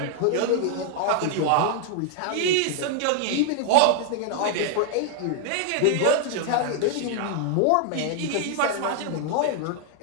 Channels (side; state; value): both; different; correlation 0.00